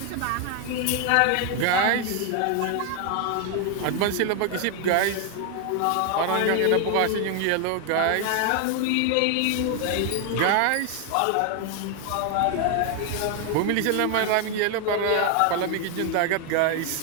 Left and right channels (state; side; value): different; both; correlation 0.01